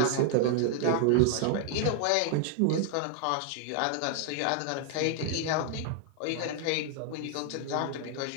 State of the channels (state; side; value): different; both; correlation 0.00